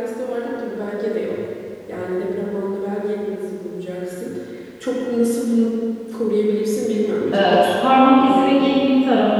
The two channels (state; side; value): identical; both; correlation 1.00